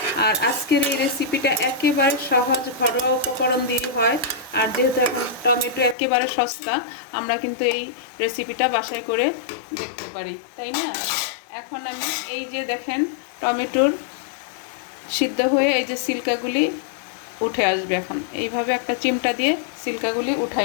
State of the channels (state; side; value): drops out; right; at 6.0 s